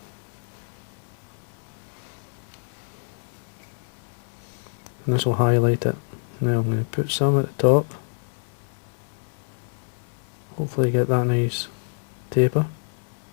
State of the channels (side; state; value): right; silent; 61 dB below the other